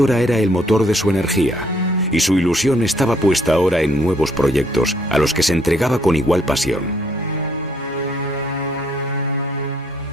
era el motor de su energía, y su ilusión estaba puesta ahora en nuevos proyectos a los que se entregaba con igual pasión.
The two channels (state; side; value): normal; both; correlation 0.67